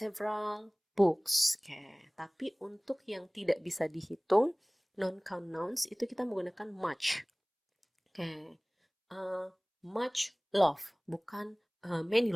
books. Oke, tapi untuk yang tidak bisa dihitung, non-count nouns itu kita menggunakan much. Oke, much love, bukan many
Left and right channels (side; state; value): both; identical; correlation 1.00